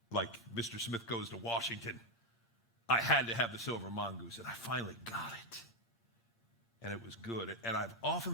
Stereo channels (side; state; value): both; normal; correlation 0.05